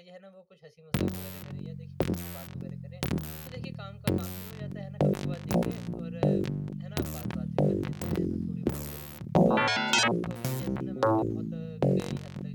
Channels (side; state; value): both; identical; correlation 1.00